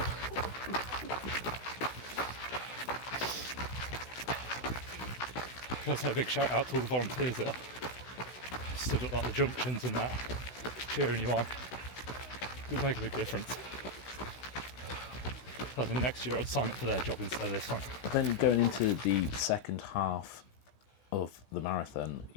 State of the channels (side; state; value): right; late; 16 ms